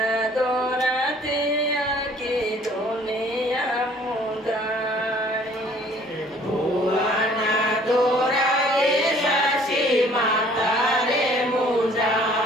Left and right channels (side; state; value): both; normal; correlation 0.56